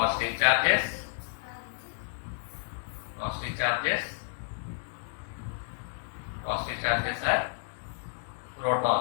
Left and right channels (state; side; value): silent; right; 57 dB below the other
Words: charges, Positive charges are